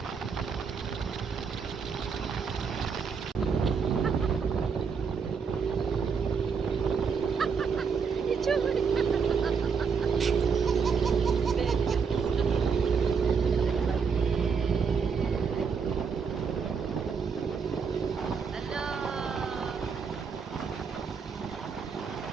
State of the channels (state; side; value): quieter; left; 5.8 dB